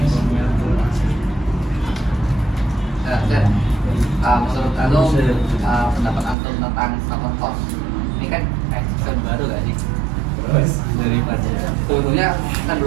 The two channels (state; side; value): drops out; left; at 6.4 s